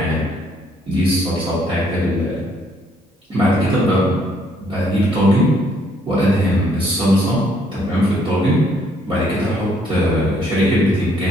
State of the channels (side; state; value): both; normal; correlation 0.67